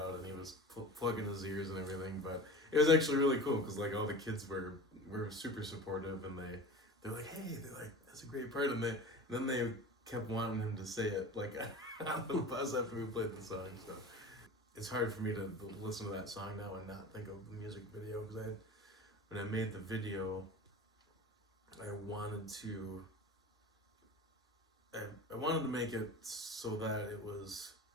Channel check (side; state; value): both; normal; correlation 0.35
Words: and he was plugging his ears and everything. But it was actually really cool because all the kids were super supportive, and they're like, hey, that's a great part, and then they kept wanting him to say it on the bus after we played the song. So it's hard for me to listen to that song now and not think of the music video, because when I made the video, I wanted to make it so that it was